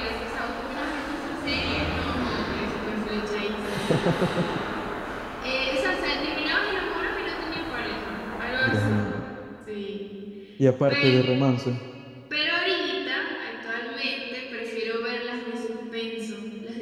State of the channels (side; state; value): both; identical; correlation 1.00